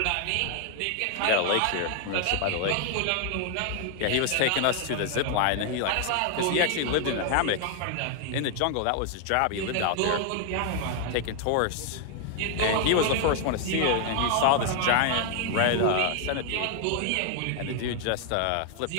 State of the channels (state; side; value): different; both; correlation 0.00